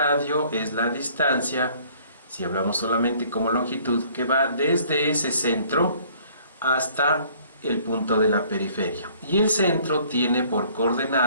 es la distancia, si hablamos solamente como longitud, que va desde ese centro hasta el punto de la periferia. Y el centro tiene por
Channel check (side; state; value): both; inverted; correlation -0.58